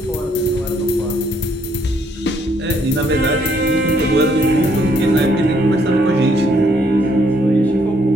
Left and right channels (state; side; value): normal; both; correlation 0.69